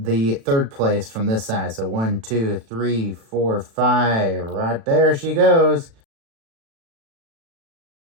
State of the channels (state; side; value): late; left; 36 ms